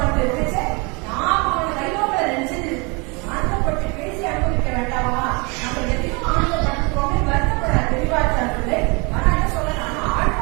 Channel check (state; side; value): quieter; left; 29.9 dB